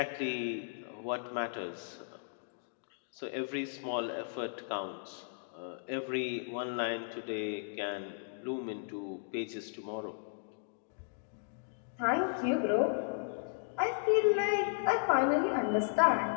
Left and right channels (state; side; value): silent; right; digital silence